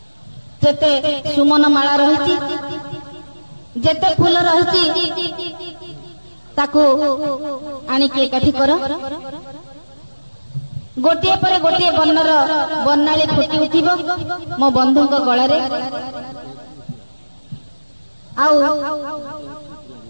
जेते सुमन माला रही जेते फूल रही ताकू आनिकी एकाठी कर गोटे पर गोटे वर्णर वर्णाली फुटी उठिब मो बंधु गलार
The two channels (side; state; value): both; inverted; correlation -1.00